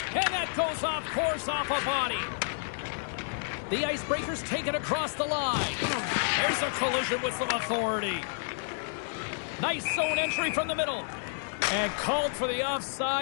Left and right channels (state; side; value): silent; right; digital silence